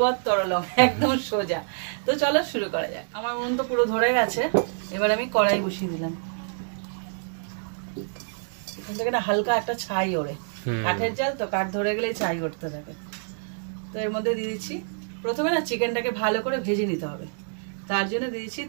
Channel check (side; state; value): left; silent; digital silence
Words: তরলং, একদম সোজা। তো চলো শুরু করা যাক। আমার মন তো পুরো ধরে গেছে, এবার আমি কড়াই বসিয়ে দিলাম। এখান থেকে না হালকা একটা ছাই ওড়ে, কাঠের জাল তো, কাঠ ধরে গেলে ছাই উঠতে থাকে। তো এর মধ্যে দিয়ে দিচ্ছি, প্রথমে না চিকেনটাকে ভালো করে ভেজে নিতে হবে, তার জন্য দিয়েছি